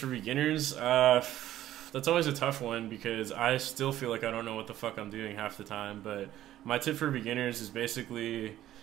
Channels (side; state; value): left; quieter; 13.2 dB